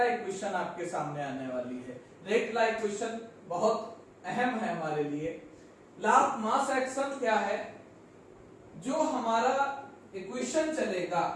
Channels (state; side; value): identical; both; correlation 1.00